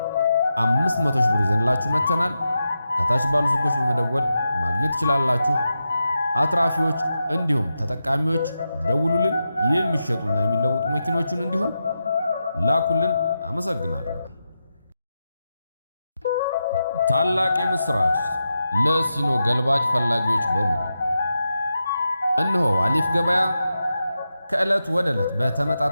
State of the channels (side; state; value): both; inverted; correlation -0.89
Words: 500 ሺህ ብር ይዘንላችሁ መተናል። ከታች ባሉ ስልኮች በመደወል ማግኘት ትችላላችሁ። አትራፊዎች እንዲሁም ተጠቃሚዎች ደውሉልን። የሚሸጡና የሚለውጡ መኪኖቹን እንዲሁም ላኩልን። አመሰግናለሁ። ታላቅ የምስራች ለሲኖ ገልባጭ ፈላጊዎች በሙሉ እነሆ አሊፍ ገበያ ከዕለት ወደ ዕለት